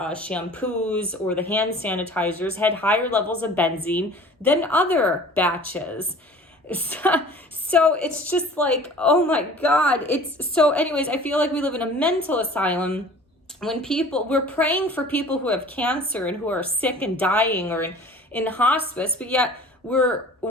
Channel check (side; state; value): both; normal; correlation 0.45